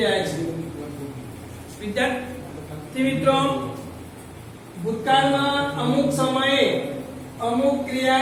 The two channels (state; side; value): identical; both; correlation 1.00